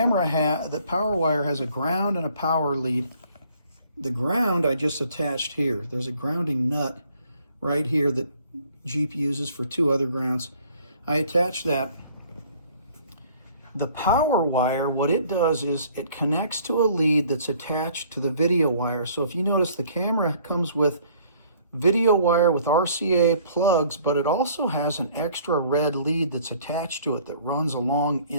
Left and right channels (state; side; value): inverted; both; correlation -0.57